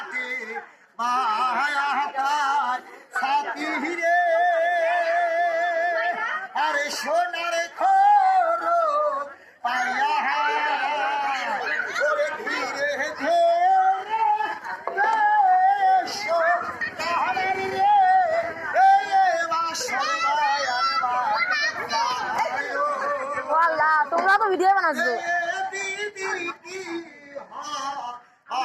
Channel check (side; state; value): both; identical; correlation 1.00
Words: মায়াকার সাথী রে আরে সোনার খোর পায়া ওরে ধীরে ধীরে তোমরা তো ভিডিও বানাচ্ছ